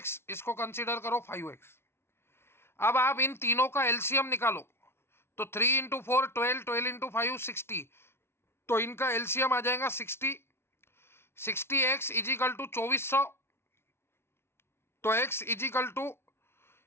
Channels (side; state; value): right; late; 0.12 ms